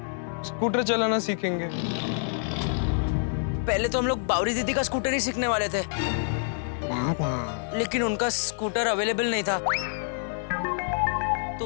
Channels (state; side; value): silent; right; digital silence